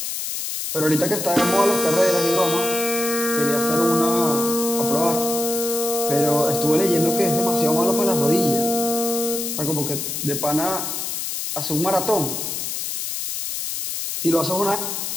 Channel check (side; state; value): left; noise; hiss, 4 dB below the sound